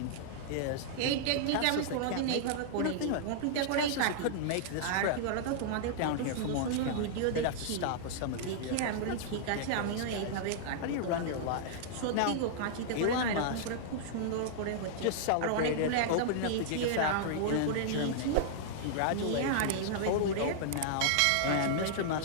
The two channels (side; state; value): both; different; correlation -0.01